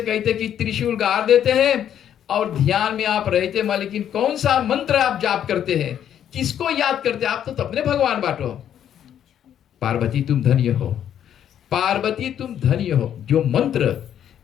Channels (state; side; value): quieter; right; 9.9 dB